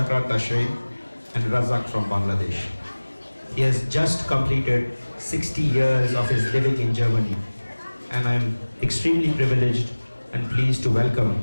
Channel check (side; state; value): both; inverted; correlation -1.00